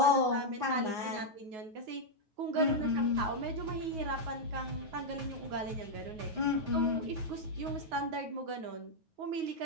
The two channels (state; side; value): late; left; 9.4 ms